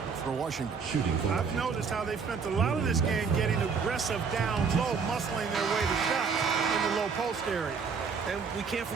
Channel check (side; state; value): left; quieter; 5.6 dB